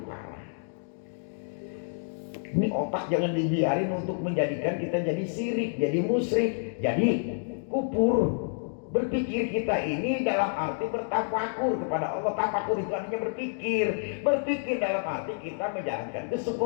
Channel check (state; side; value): silent; right; digital silence